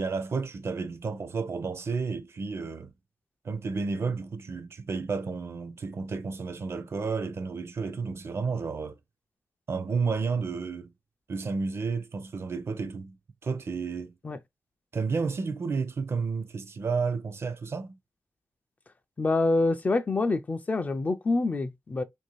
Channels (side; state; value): both; normal; correlation 0.85